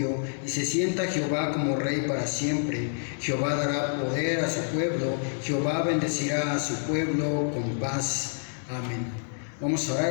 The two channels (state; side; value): silent; right; digital silence